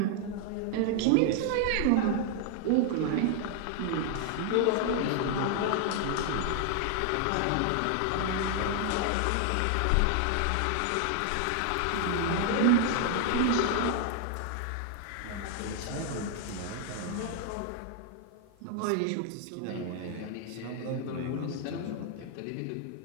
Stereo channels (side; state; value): both; different; correlation 0.00